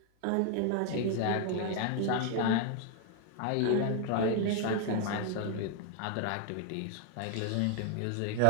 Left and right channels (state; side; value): different; both; correlation 0.00